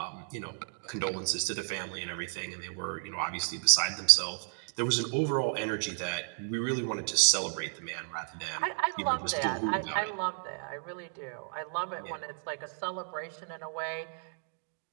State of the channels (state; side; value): silent; left; 56 dB below the other